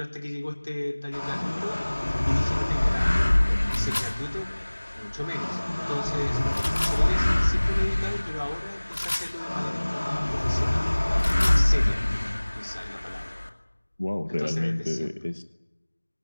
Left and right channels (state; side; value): inverted; both; correlation -1.00